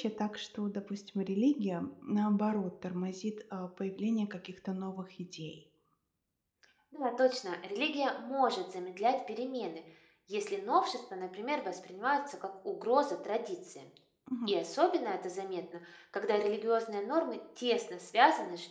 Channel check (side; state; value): both; identical; correlation 1.00